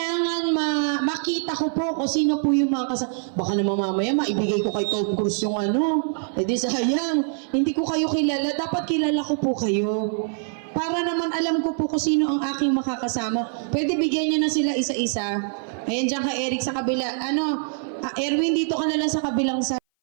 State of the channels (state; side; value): silent; left; 58 dB below the other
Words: makita ko po kung sino po yung mga baka naman mamaya maibigay ko kay Tom Cruise yung ano. Eh di sayang, hindi ko kayo kilala. Dapat kilala ko po kayo. Para naman alam ko po kung sino ang aking makakasama. Pwede bigyan nyo na sila isa-isa. Ayan dyan ka Eric sa kabila. Erwin, dito ka na lang sa kabilang side.